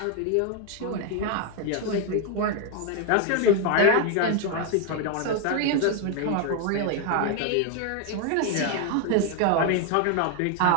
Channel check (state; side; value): different; both; correlation 0.01